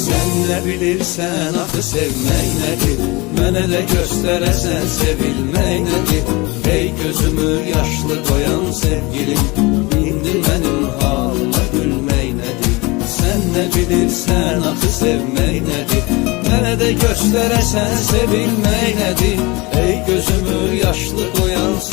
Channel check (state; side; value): quieter; right; 24.7 dB